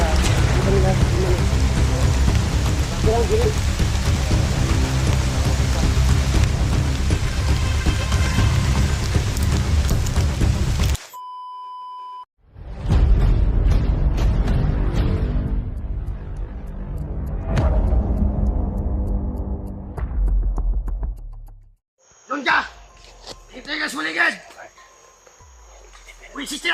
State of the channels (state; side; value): identical; both; correlation 1.00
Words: kami dah gimana bilang gini Lunja! Hintay ka sa maligid! Wisis